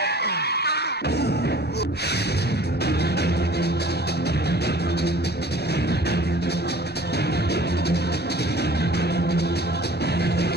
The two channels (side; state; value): both; normal; correlation 0.48